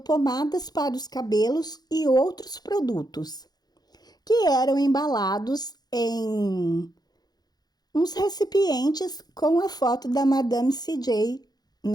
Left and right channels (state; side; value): late; right; 0.19 ms